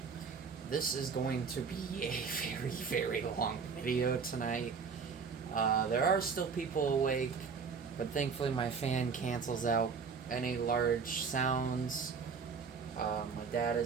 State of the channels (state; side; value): quieter; left; 5.6 dB